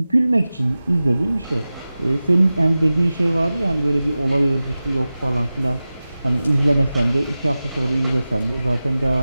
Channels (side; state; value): both; inverted; correlation -0.96